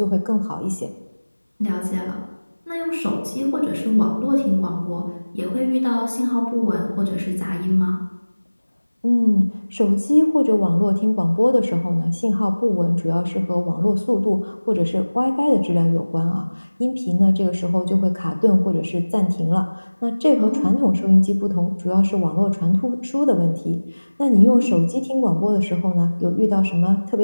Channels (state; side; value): inverted; both; correlation -1.00